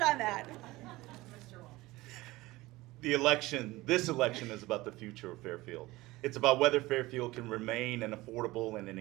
on that. Mr. Wong. This election is about the future of Fairfield. It's about whether Fairfield can remain an affordable and an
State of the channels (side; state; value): left; quieter; 19.6 dB